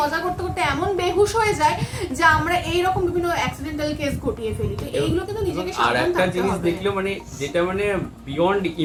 করতে করতে এমন বেহুশ হয়ে যায় যে আমরা এইরকম বিভিন্ন অ্যাক্সিডেন্টাল কেস ঘটিয়ে ফেলি। তো এইগুলো কিন্তু নিজেকে আর সাবধান একটা থাকতে জিনিস হবে। দেখলো মানে যেটা মানে বিয়ন্ড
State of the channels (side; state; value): both; identical; correlation 1.00